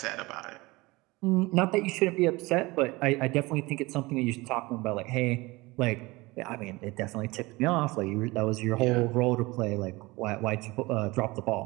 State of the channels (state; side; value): quieter; left; 22.2 dB